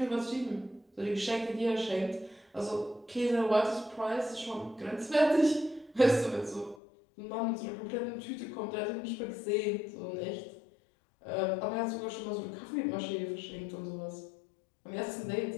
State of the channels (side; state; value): right; drops out; at 6.8 s